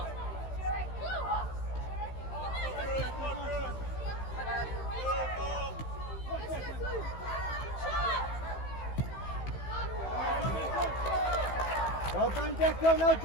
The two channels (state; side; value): late; right; 15 ms